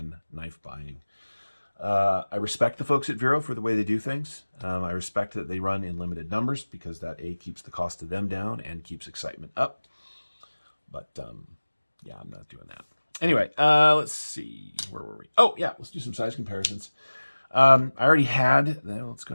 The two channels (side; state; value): both; inverted; correlation -1.00